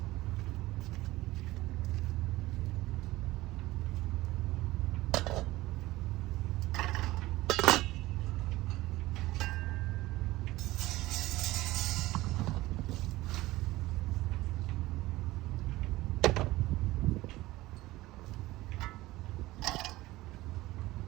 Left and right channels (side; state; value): left; quieter; 18.1 dB